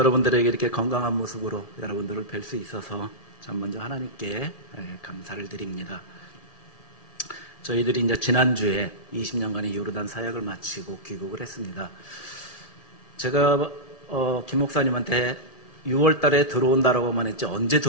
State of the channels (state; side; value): late; right; 1.7 ms